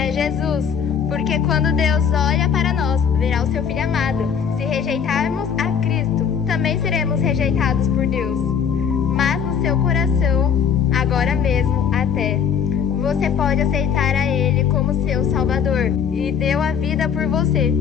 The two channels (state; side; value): quieter; right; 7.3 dB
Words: Jesus, Porque quando Deus olha para nós, verá o seu Filho amado. Se rejeitarmos a Cristo, também seremos rejeitados por Deus. Mas no seu coração, agora mesmo até, você pode aceitar a Ele como seu Salvador e deu a vida por você.